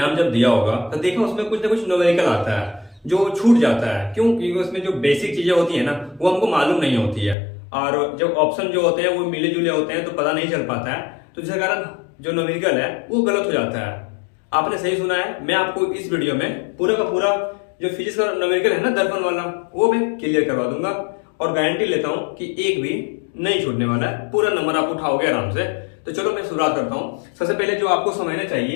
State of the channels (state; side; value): drops out; right; at 7.4 s